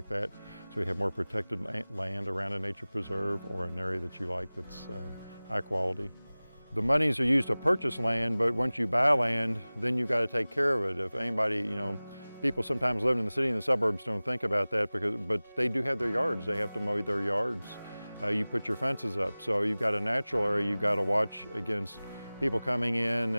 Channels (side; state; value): both; inverted; correlation -0.99